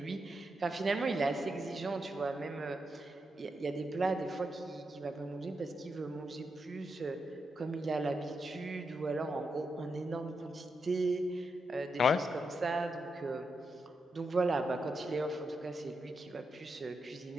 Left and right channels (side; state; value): both; normal; correlation 0.85